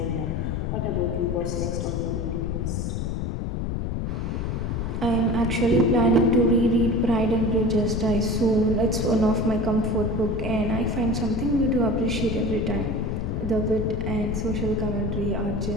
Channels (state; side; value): noise; left; rumble, 2 dB below the sound